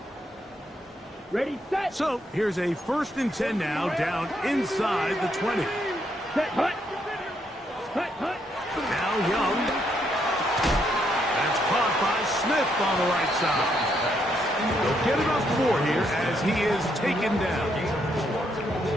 Ready, set. So here's a 1st and 10 now, down inside the 20. Set, hut. Hut, hut. Now Young. That's caught by Smith on the right side. They'll get it up 4 here as he is taken down.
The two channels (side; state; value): both; normal; correlation 0.75